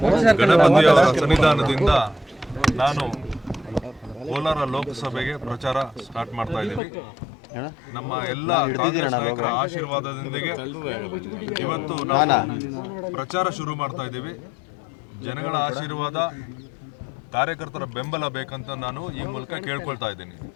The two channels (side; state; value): right; drops out; at 6.8 s